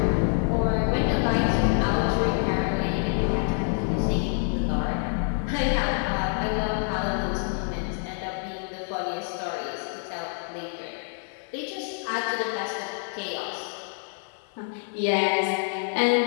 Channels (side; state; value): right; silent; 56 dB below the other